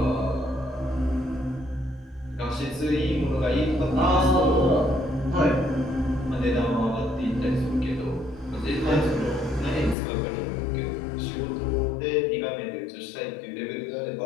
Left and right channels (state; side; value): drops out; right; at 10.0 s